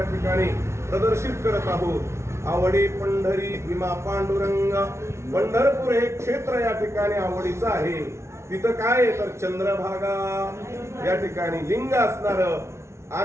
ठिकाणी प्रदर्शित करत आहोत। आवडी पंढरी भीमा पांडुरंग, पंढरपूर हे क्षेत्र या ठिकाणी आवडीचं आहे। तिथं काय तर चंद्रभागा या ठिकाणी लिंग असणार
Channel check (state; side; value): late; left; 0.13 ms